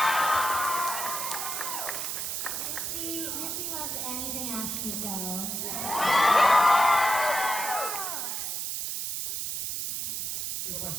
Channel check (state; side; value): noise; right; hiss, 3 dB below the sound